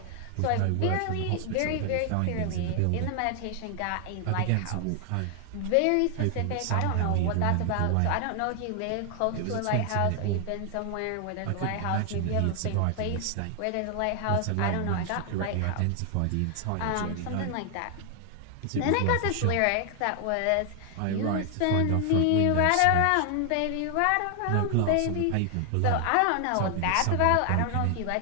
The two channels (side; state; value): both; different; correlation 0.00